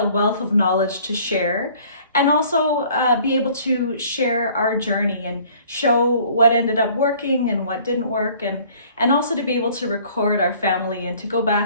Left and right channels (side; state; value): both; inverted; correlation -0.54